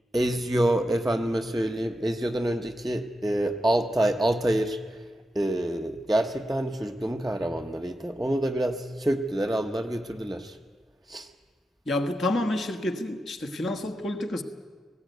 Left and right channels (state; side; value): normal; both; correlation 0.88